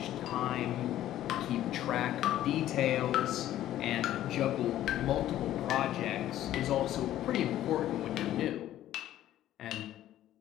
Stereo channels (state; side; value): quieter; right; 13.0 dB